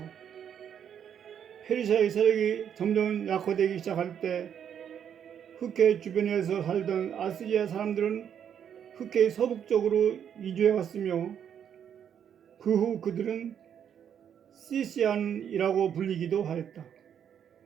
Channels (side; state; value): left; quieter; 8.7 dB